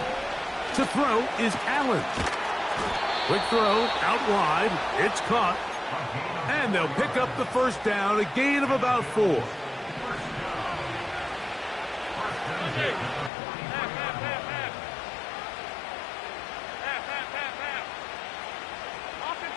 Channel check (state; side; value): drops out; right; at 13.3 s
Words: To throw is Allen. Quick throw out wide. It's caught. And they'll pick up the 1st down, a gain of about 4.